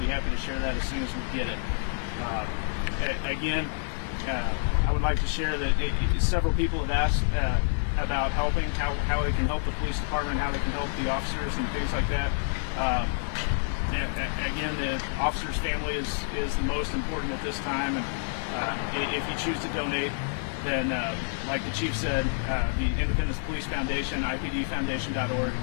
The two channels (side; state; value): right; silent; digital silence